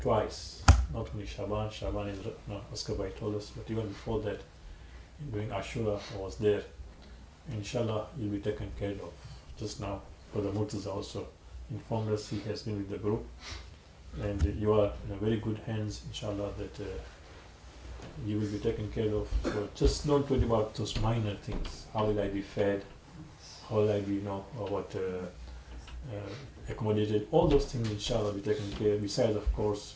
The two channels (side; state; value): both; identical; correlation 1.00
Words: twice, not only Shaban is Askabai told us, but even before that, during Ashura, I was there. Inshallah, you'll be taken care of. Just now, Brother Murtaza also informed us he has been with the group, and you are in a very good hands, inshallah, that you will be taken care of. So just don't worry about those minor things. How will I be fed? How will I be, accommodated? All those things, inshallah, will be taken care of. Besides, of course,